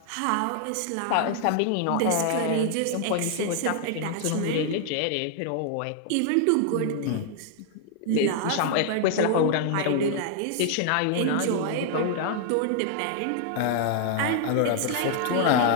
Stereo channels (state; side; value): different; both; correlation 0.00